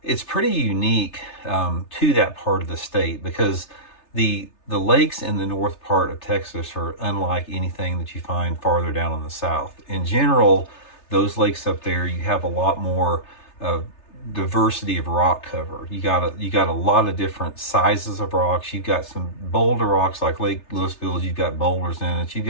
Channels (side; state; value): right; late; 3.3 ms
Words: it's pretty unique to that part of the state, because the lakes in the north part of Texas are unlike anything that you find farther down in the south. In general, those lakes up there, you have a lot more diversity of rock cover. You got a lot of different sizes of rocks. You've got some boulder rocks like Lake Louisville. You've got boulders in it. You've